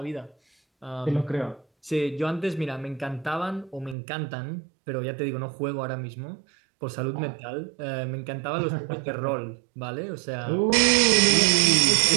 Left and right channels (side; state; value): left; drops out; at 4.0 s